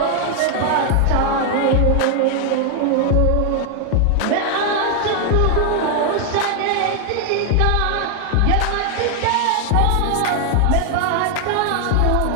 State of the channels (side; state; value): both; different; correlation 0.00